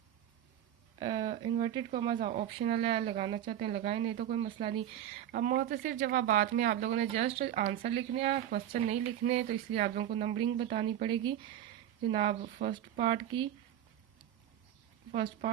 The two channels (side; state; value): left; quieter; 11.1 dB